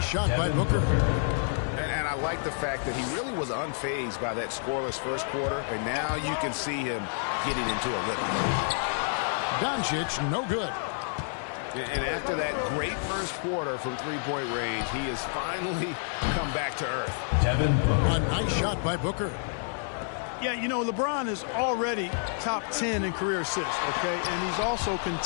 shot by Booker. And I like the fact that he really was unfazed by that scoreless first quarter, and now you can see him getting into a rhythm. Doncic, no good. And after that great first quarter from three-point range, he has finally come back to earth. Devin Booker. A nice shot by Booker. Yeah, you know, LeBron is already top 10 in career assists, okay? And he's also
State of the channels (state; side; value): silent; right; 59 dB below the other